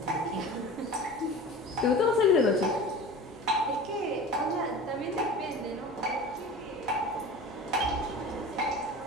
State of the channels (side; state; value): both; normal; correlation 0.36